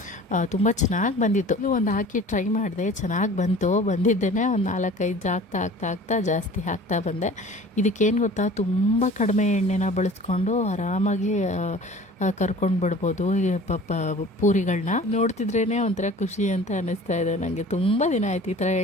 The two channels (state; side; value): normal; both; correlation 0.44